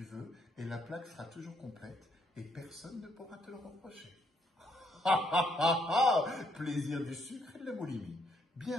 veux et la plaque sera toujours complète et personne ne pourra te le reprocher. Plaisir du sucre et de la boulimie.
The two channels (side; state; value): both; normal; correlation 0.72